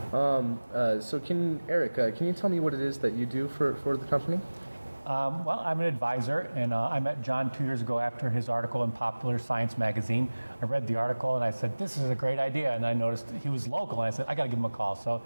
So Eric, can you tell me what it is that you do for the company? Well, I'm an advisor, and I met John 2 years ago after his article in Popular Science magazine. I read the article and I said, this is a great idea. And I noticed he was local, and I said, I got to give him a call. So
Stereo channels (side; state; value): both; inverted; correlation -1.00